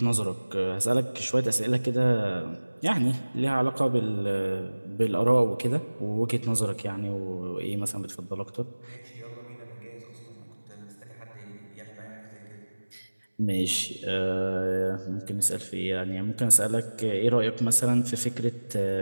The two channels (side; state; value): both; inverted; correlation -1.00